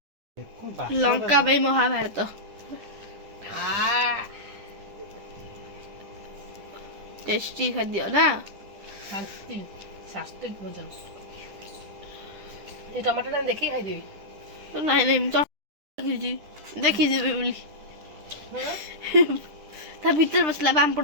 ଲଙ୍କା ପାଇଁ ମହାଭାରତ टेस्टी खाद्य ना ଶାନ୍ତି ସାତ୍ତ୍ୱିକ ଭୋଜନ ଏ ଟମାଟୋଟା ଦେଖିକି ଖାଇଦେବି ନାଇଁ ନାଇଁ ମୁଁ ଦେଖିଛି ଦେଖିଯିବି ବୋଲି ତା ଭିତରେ ବସିଲା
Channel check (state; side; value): late; left; 10 ms